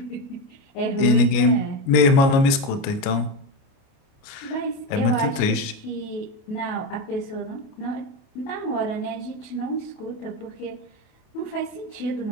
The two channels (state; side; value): late; right; 29 ms